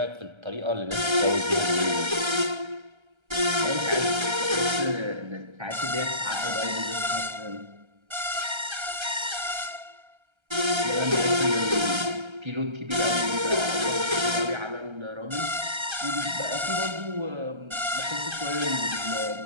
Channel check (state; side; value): late; left; 1.3 ms